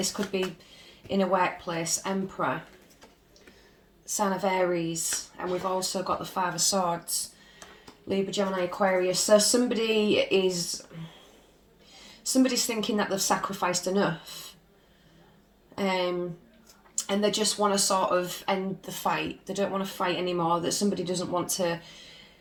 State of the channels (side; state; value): both; identical; correlation 1.00